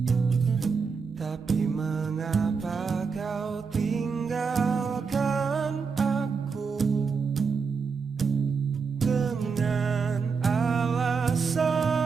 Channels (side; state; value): left; quieter; 5.4 dB